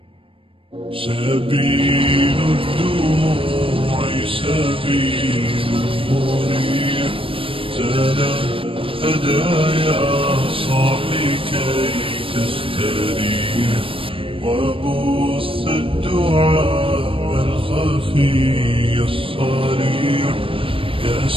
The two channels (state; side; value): late; left; 0.26 ms